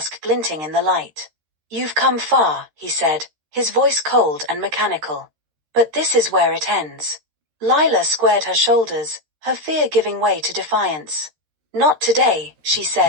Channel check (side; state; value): left; late; 13 ms